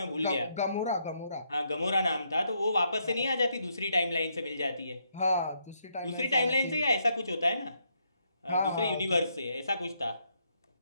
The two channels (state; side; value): inverted; both; correlation -0.76